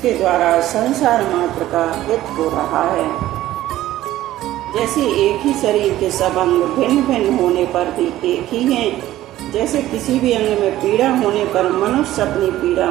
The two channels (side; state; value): left; quieter; 14.5 dB